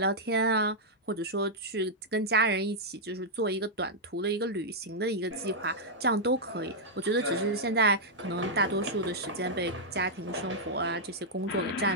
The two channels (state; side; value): normal; both; correlation -0.06